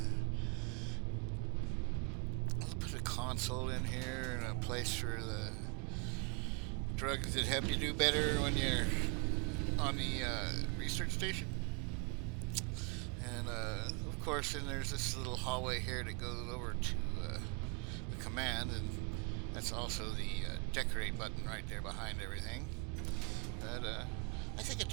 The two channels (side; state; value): left; quieter; 33.2 dB